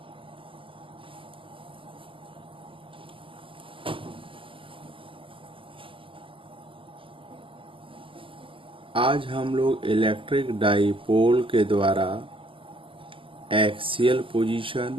आज हम लोग इलेक्ट्रिक डाइपोल के द्वारा एक्सियल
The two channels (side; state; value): left; late; 0.25 ms